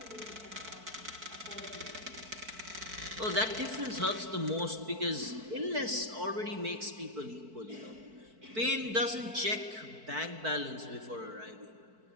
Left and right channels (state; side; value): late; left; 4.5 ms